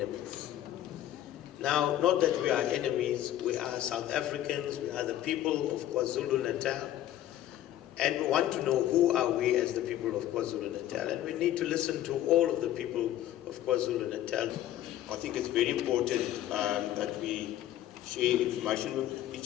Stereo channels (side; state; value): right; quieter; 12.8 dB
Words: Now, not that we are enemies, we are South Africans, we are the people of KwaZulu-Natal, and we want to know who are we as the people of KwaZulu-Natal, and we need to listen to all of the people of KwaZulu-Natal. I think it's very important that we share information with